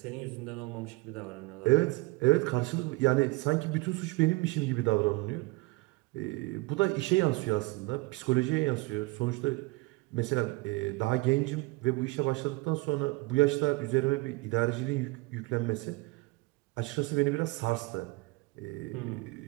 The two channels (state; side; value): quieter; left; 24.1 dB